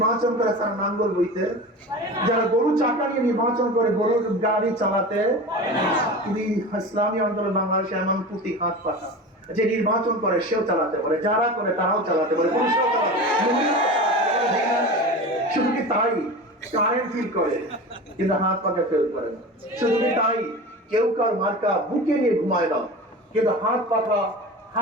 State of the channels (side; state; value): both; normal; correlation 0.31